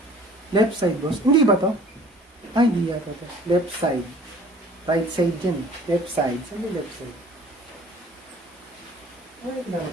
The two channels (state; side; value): normal; both; correlation 0.51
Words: Left side, boss. Hindi ba to? Ay, hindi yata to. Left side. Right side dyan. Left side. Saan yung left side? Ay,